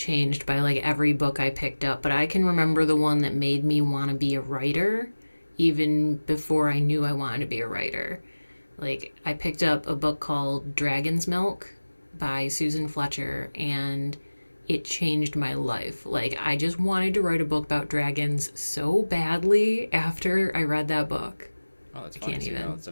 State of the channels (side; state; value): both; inverted; correlation -1.00